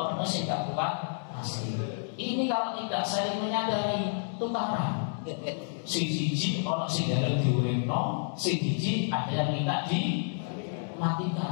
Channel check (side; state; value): right; silent; digital silence